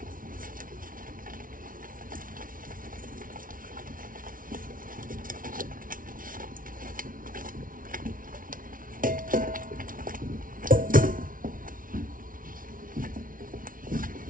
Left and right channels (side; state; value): left; late; 0.39 ms